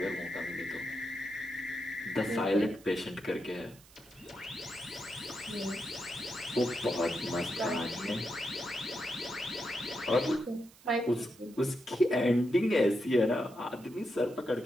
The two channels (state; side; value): noise; right; hiss, 24 dB below the sound